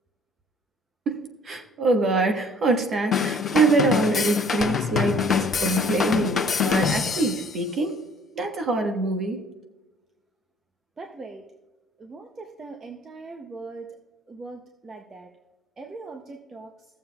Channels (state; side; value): normal; both; correlation 0.56